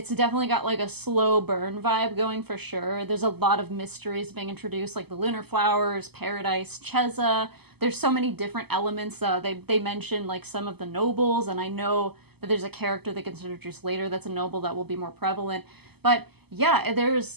definitely got like a slow burn vibe going for sure. There's a lot of mysteries being introduced, like the lunar flowers, paradise, Cheza. There's so many different elements. They mention like some of the nobles, and I know that there's a character that gets introduced later that's a noble that will be more prevalent. But yeah,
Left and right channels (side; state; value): left; late; 0.97 ms